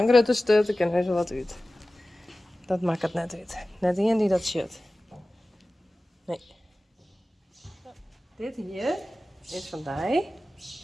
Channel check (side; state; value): both; normal; correlation 0.96